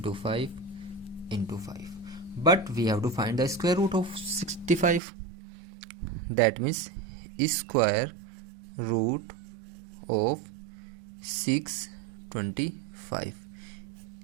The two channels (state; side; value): drops out; left; at 5.0 s